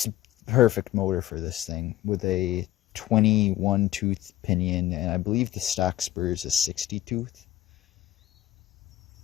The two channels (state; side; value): quieter; right; 14.2 dB